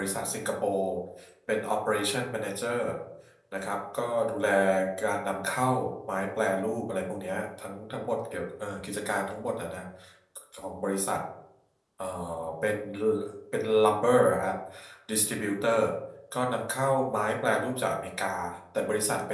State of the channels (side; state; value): both; identical; correlation 1.00